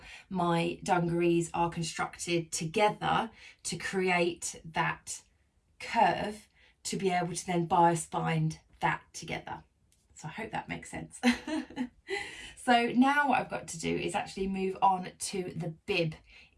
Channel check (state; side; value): identical; both; correlation 1.00